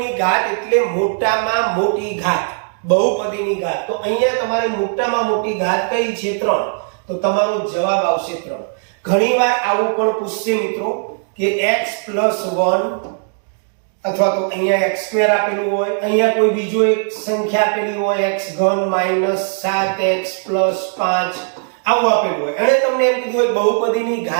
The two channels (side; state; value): left; silent; 63 dB below the other